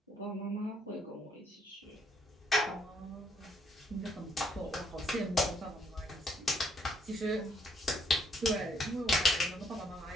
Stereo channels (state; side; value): normal; both; correlation 0.69